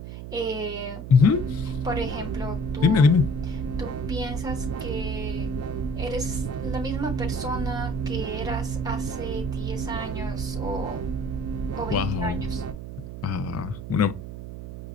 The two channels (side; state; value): right; noise; hum, 9 dB below the sound